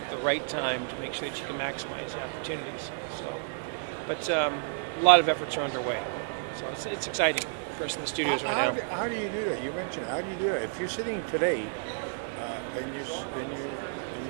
at the right time to make sure that you can maximize the opportunities. So, but a lot of efforts are underway. So it's exciting for us in the studios right now. How do you do that? You mentioned how do you do that? If you're sitting today and you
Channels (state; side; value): silent; left; digital silence